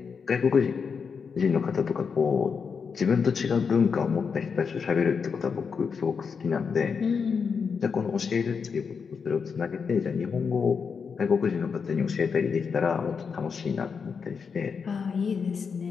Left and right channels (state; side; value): quieter; right; 5.9 dB